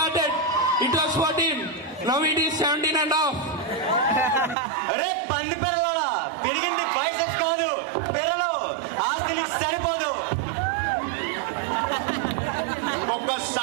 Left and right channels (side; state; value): left; drops out; at 4.5 s